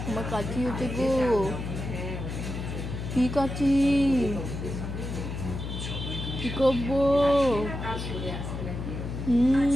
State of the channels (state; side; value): noise; left; hum, 6 dB below the sound